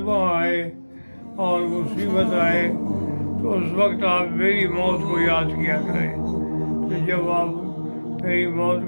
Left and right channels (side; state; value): both; inverted; correlation -1.00